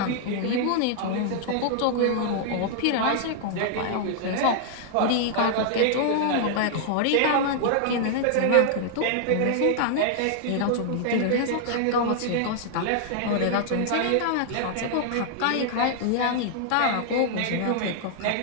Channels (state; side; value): different; both; correlation -0.01